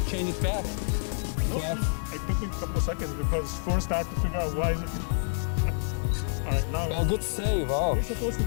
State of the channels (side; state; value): right; silent; 59 dB below the other